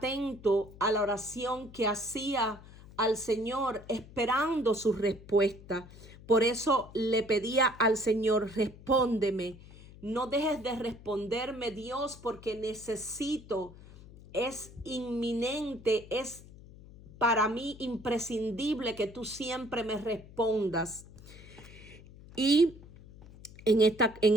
a la oración que hacía al Señor, esperando su respuesta. Por eso le pedía al Señor: respóndeme, no dejes de responderme, Dios, porque necesito, es inminente, es para mí imprescindible que tú siempre me respondas. Y en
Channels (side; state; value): left; noise; hum, 19 dB below the sound